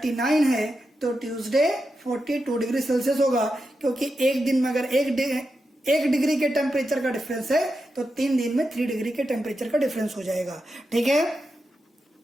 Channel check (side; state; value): both; normal; correlation 0.88